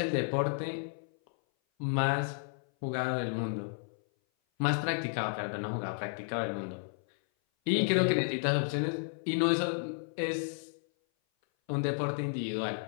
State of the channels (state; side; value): silent; right; 56 dB below the other